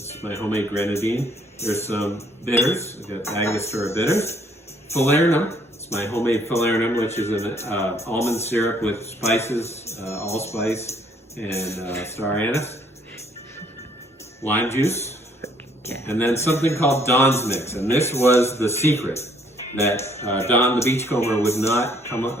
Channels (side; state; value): both; normal; correlation 0.64